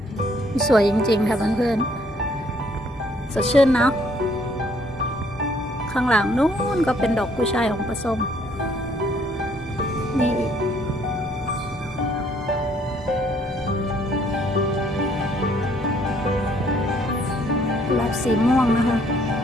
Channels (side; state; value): both; normal; correlation 0.64